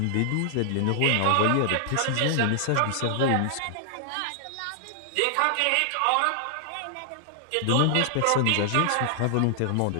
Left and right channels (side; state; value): both; different; correlation -0.01